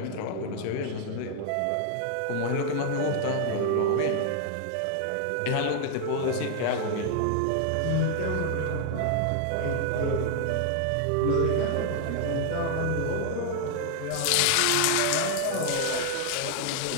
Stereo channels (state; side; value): different; both; correlation 0.00